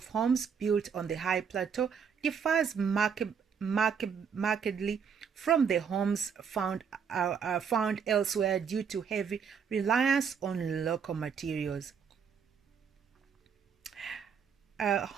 homes built on the high plateau differs markedly from the homes found elsewhere due to heavy reliance on local materials.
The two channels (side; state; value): left; quieter; 6.7 dB